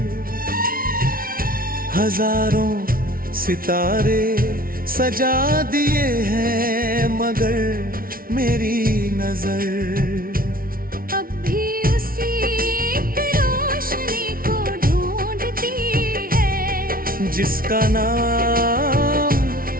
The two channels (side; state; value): left; late; 0.43 ms